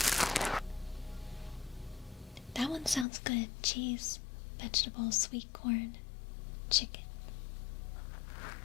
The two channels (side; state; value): right; drops out; at 3.1 s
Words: That one sounds good. Cheese, vegetables, sweet corn, chicken.